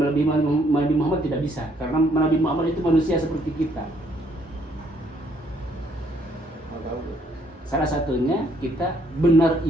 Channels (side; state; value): both; normal; correlation 0.68